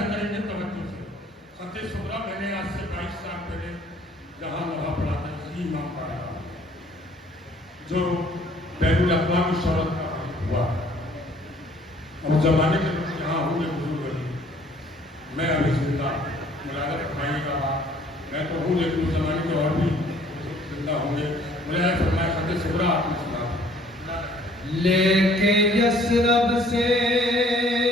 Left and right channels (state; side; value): normal; both; correlation 0.58